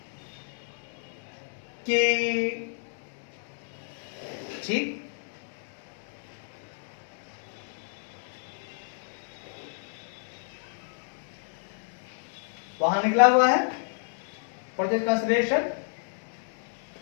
कि ठीक वहां निकला हुआ है परचेज कंसिडरेशन,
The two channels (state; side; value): silent; right; digital silence